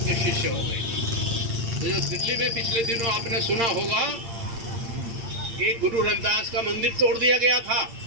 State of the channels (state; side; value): late; left; 8.7 ms